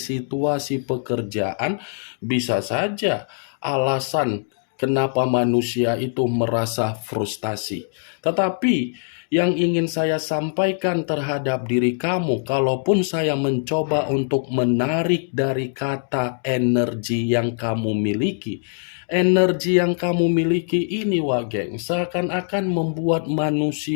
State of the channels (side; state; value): right; silent; 64 dB below the other